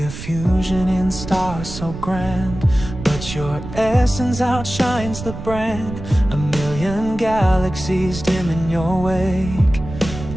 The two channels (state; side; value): noise; right; rumble, 10 dB below the sound